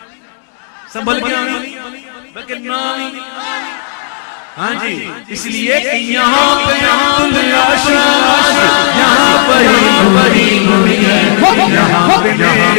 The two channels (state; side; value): silent; right; digital silence